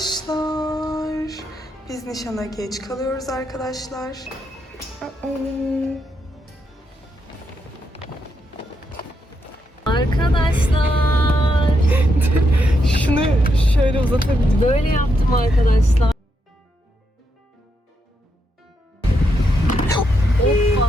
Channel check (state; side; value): normal; both; correlation 0.81